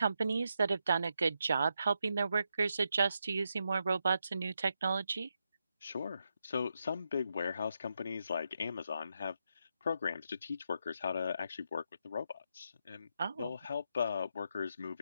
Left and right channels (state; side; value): inverted; both; correlation -0.83